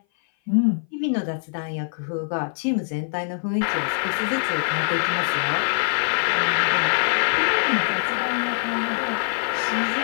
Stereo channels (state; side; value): silent; right; 58 dB below the other